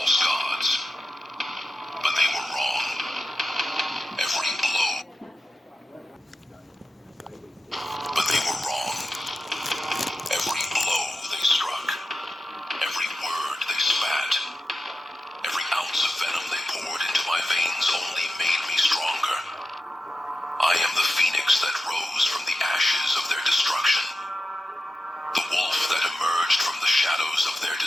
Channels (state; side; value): normal; both; correlation 0.91